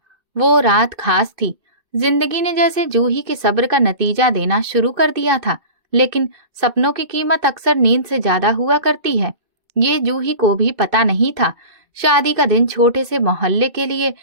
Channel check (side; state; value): left; late; 2.5 ms